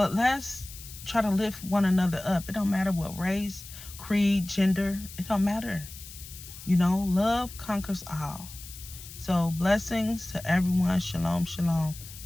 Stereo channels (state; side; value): noise; left; hiss, 15 dB below the sound